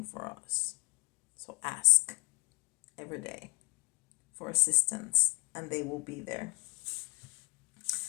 for us. So ask every day for assistance, and they will be there.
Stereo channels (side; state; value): right; quieter; 32.6 dB